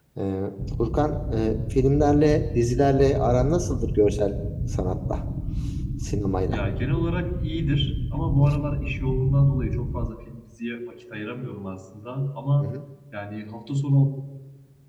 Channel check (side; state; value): both; identical; correlation 1.00